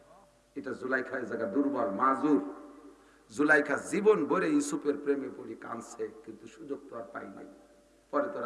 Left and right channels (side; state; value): both; identical; correlation 1.00